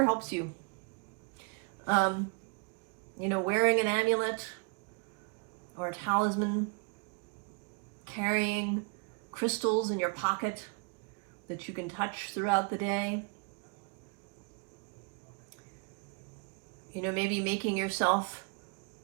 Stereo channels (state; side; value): quieter; left; 33.8 dB